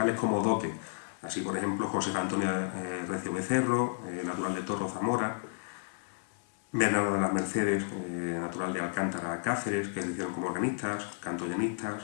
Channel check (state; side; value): silent; right; digital silence